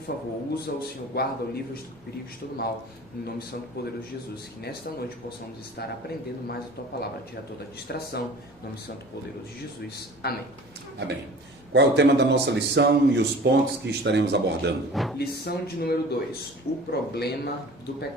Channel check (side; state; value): both; normal; correlation 0.43